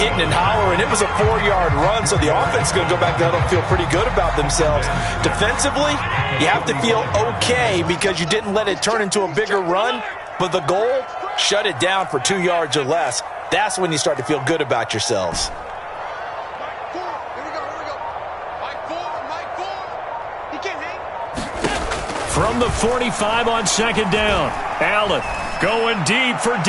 and hollering, it was a 4-yard run, so the offense is going to go back there and feel pretty good about themselves. Defensively, you have to feel okay because you didn't let it turn into a bigger run, but the goal, shut it down for 2 yards or less. That's when you start to feel good about yourselves. From the 45 on second down, Allen going deep for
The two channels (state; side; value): identical; both; correlation 1.00